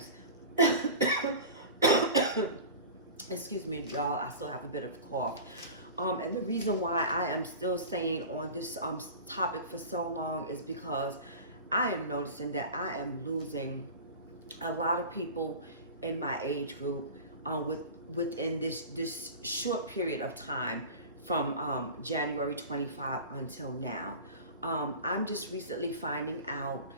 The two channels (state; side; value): inverted; both; correlation -0.34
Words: Excuse me, y'all, I still have a bit of a cough. And the reason why I am still staying on this topic for so long is because I am noticing that I am losing a lot of people in my age group within this short period of time from January 25 until now. I'm just recently finding out